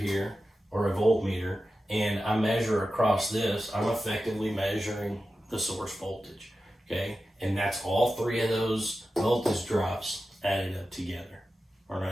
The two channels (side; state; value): both; normal; correlation 0.92